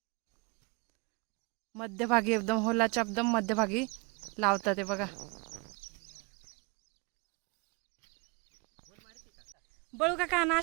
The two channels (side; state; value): left; quieter; 29.4 dB